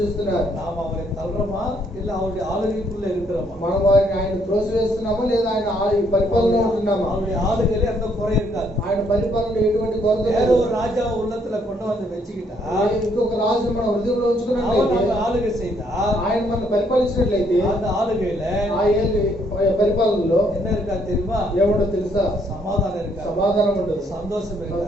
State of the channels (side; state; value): both; normal; correlation 0.70